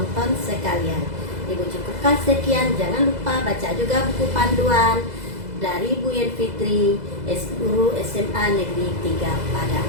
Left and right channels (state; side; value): late; left; 2.0 ms